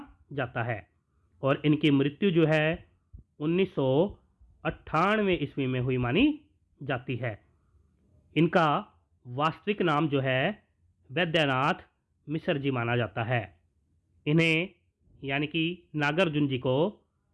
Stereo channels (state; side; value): identical; both; correlation 1.00